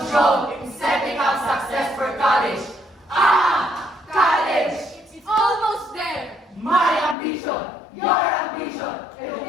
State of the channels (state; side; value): drops out; right; at 7.2 s